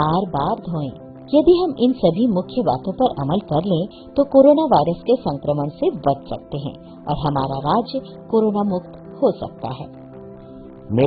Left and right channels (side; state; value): both; identical; correlation 1.00